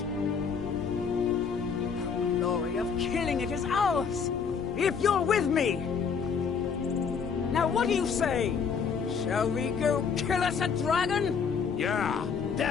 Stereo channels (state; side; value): quieter; right; 6.2 dB